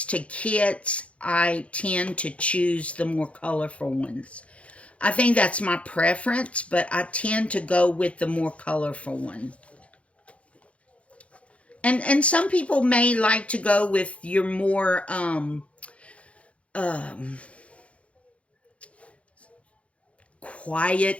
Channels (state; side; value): late; right; 0.063 ms